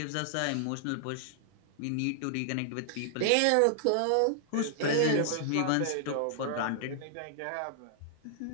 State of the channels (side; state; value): both; different; correlation -0.01